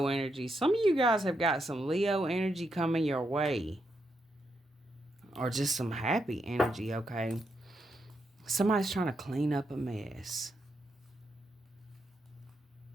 energy. Some of you guys have got some Leo energy coming your way. Or just some happy energy, okay? Somebody's trying to clean up a mess.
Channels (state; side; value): normal; both; correlation 0.81